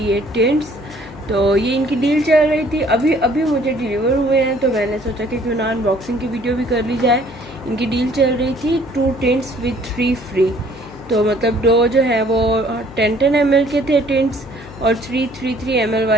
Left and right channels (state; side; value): noise; left; hum, 18 dB below the sound